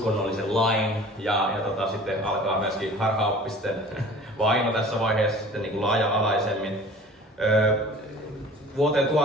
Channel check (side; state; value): both; normal; correlation 0.45